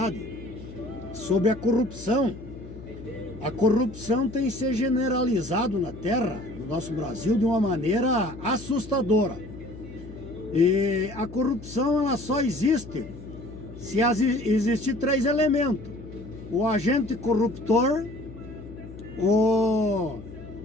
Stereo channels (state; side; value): noise; left; hum, 15 dB below the sound